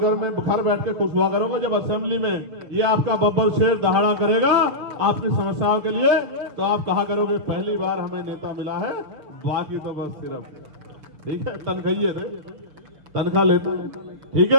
में घर बैठ के खुश हुआ करोगे जब असेंबली में ये आपका बब्बर शेर दहाड़ा करेगा आपकी समस्याओं के लिए। तो आप कहा करोगे पहली बार हमें नेता मिला है, बाकी तो बस सिर्फ ठीक है तनख्वाही थे, तनख्वाह लेते हैं, ठीक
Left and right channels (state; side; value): late; left; 6.5 ms